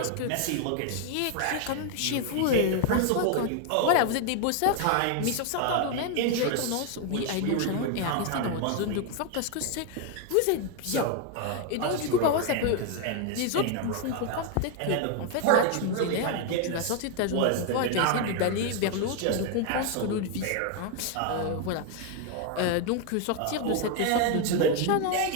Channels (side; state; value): both; different; correlation 0.01